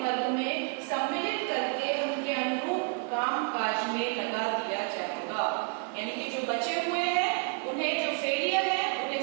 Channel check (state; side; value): quieter; left; 37.4 dB